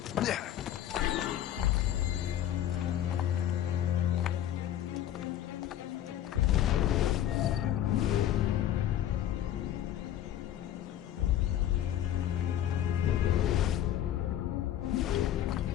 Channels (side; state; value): right; quieter; 11.5 dB